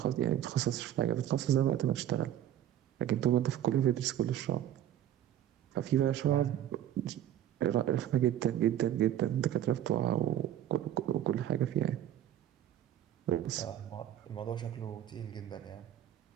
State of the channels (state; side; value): quieter; left; 11.4 dB